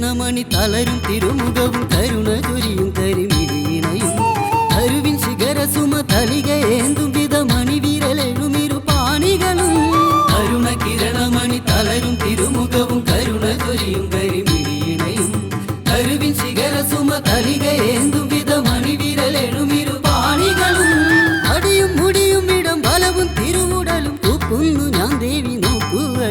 തളരും തിരുമുഖവും കരുണ ചൊരിയും കരിമിഴീണയും അരുവിൻ ശിഖരസുമ തലികയേന്തും വിധമണി വിരലെഴുമിരു പാണികളും അരുണ കിരണമണി തളരും തിരുമുഖവും കരുണ ചൊരിയും കരിമിഴീണയും അരുവിൻ ശിഖരസുമ തലികയേന്തും വിധമണി വിരലെഴുമിരു പാണികളും അടിയും മുടിയും ഇടം ബലവും തിരുവുടലും തൂക്കുന്നു ഞാൻ ദേവി നോക്കൂ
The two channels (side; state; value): both; identical; correlation 1.00